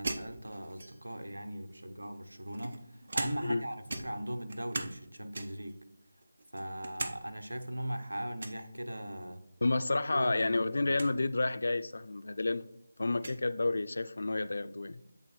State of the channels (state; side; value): inverted; both; correlation -0.97